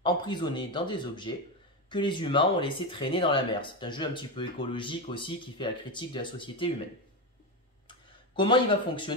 emprisonnés dans des objets que les humains ont laissé traîner dans la mer. C'est un jeu un petit peu écologique aussi qui fait la critique de la société humaine. Comment il va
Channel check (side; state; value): both; normal; correlation 0.13